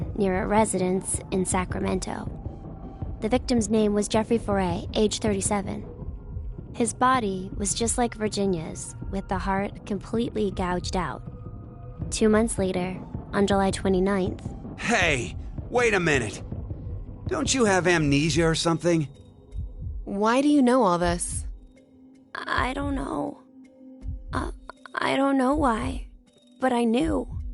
near a residence in Sacramento. The victim's name was Jeffrey Foray, age 37. His body was just like Virginia's, with the heart completely gouged out. 2 months later, on July 29th... Hey, wait a minute. Don't you have amnesia or something? Why do you know all this? I don't know. I don't know why, but I knew.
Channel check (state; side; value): identical; both; correlation 1.00